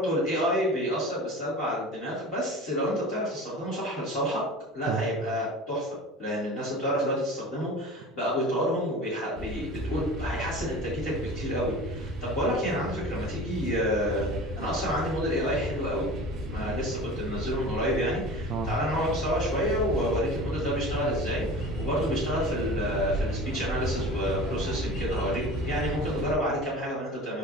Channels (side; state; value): both; normal; correlation 0.37